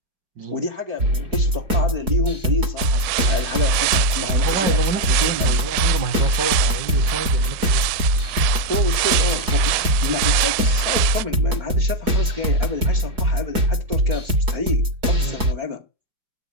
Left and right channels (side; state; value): left; late; 4.8 ms